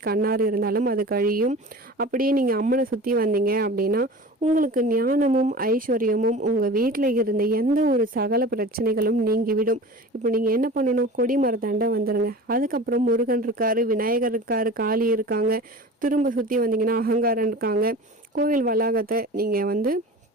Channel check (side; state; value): both; normal; correlation 0.37